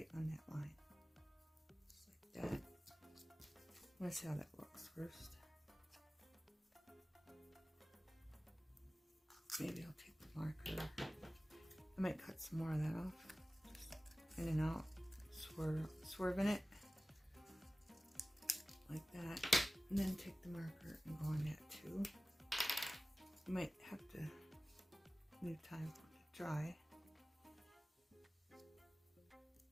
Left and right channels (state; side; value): normal; both; correlation 0.97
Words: on that line. Just like that. Let's see how that looks first. Maybe I'll take the marker. I might cut some more of that off. Just in and out. Swerving it. Like that. And then take the marker and go on that too. You might have to leave time for it to dry.